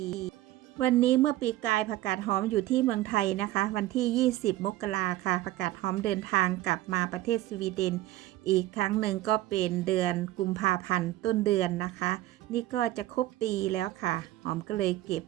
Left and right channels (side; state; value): left; quieter; 15.7 dB